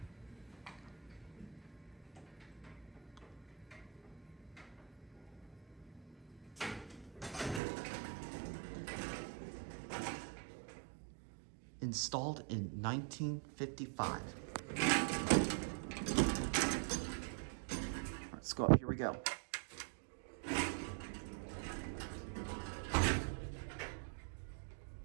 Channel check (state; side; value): drops out; left; at 7.6 s